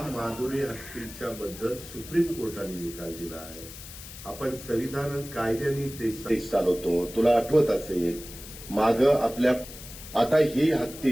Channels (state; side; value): noise; left; hiss, 14 dB below the sound